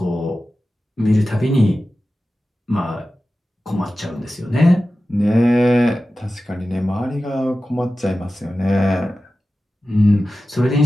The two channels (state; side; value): normal; both; correlation 0.94